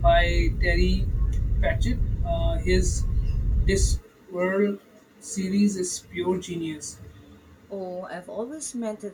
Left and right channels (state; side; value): identical; both; correlation 1.00